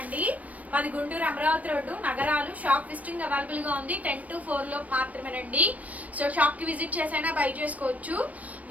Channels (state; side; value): late; left; 0.070 ms